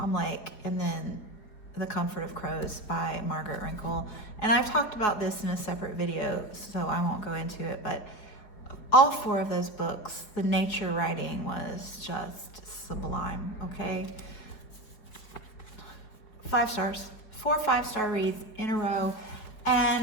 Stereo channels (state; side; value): late; right; 4.7 ms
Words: Lake, and then The Comfort of Crows by Margaret Rinkle. And I've talked about this in a separate video, so I won't go into it, but all four of those books, the nature writing was just sublime, okay? 5 stars, 4 5-star reads in a row.